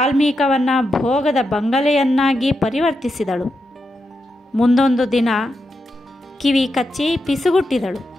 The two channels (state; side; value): normal; both; correlation 0.86